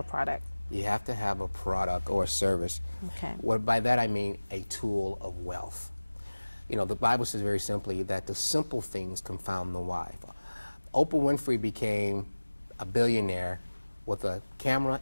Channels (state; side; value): inverted; both; correlation -1.00